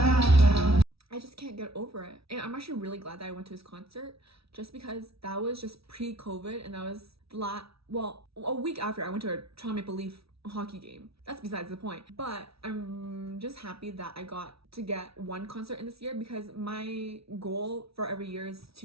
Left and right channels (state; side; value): late; left; 0.76 ms